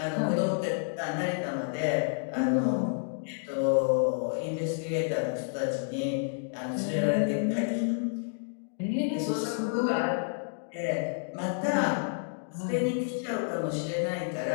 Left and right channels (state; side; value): silent; right; digital silence